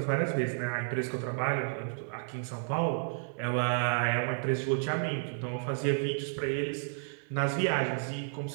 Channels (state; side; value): silent; left; 57 dB below the other